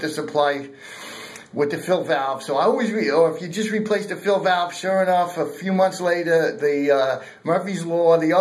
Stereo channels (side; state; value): both; identical; correlation 1.00